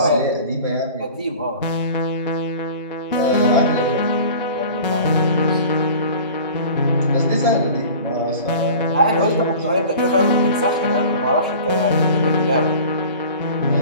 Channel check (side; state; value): both; inverted; correlation -0.41